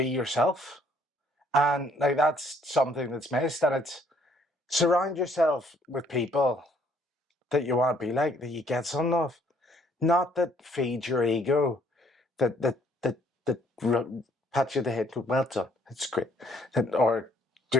yourself. And like, that's something that's missed. And it's surround yourself with people that you want to be like, that you get something of. Not that feed your ego, that pat you on the head, go, well done, it's great. Or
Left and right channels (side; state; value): both; normal; correlation 0.64